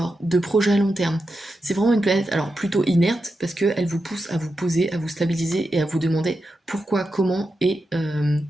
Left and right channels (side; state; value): both; normal; correlation 0.88